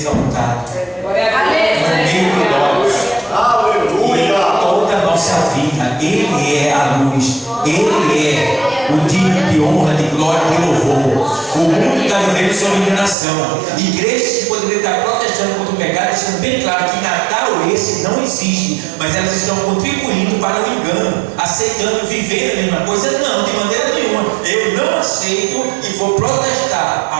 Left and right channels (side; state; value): left; drops out; at 13.2 s